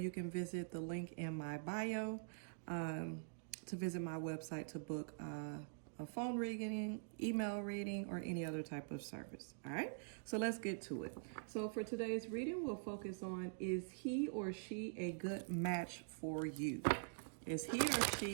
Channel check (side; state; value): left; silent; digital silence